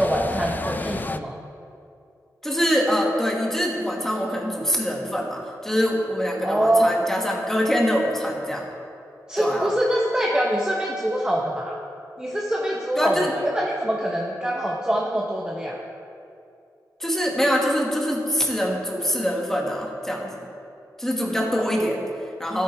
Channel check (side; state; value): both; normal; correlation 0.86